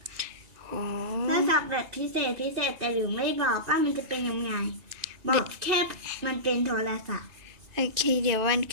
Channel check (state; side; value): late; left; 2.6 ms